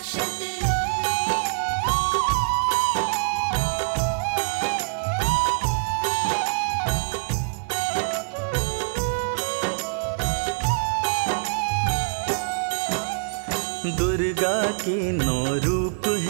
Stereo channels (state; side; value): silent; left; digital silence